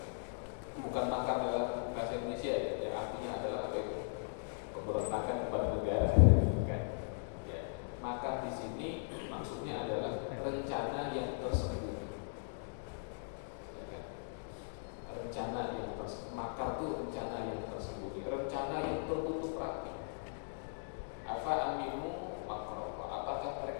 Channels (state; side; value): silent; right; digital silence